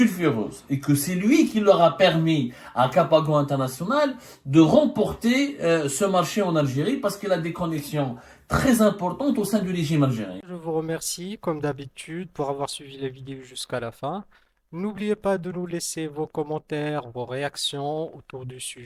et que c'est lui qui leur a permis à Capago International de remporter ce marché en Algérie parce qu'il a des connexions très importantes au sein du régime algérien. Je vous remercie, comme d'habitude, pour avoir suivi la vidéo jusqu'à la fin. N'oubliez pas de nous laisser vos commentaires, vos réactions autour du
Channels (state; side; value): identical; both; correlation 1.00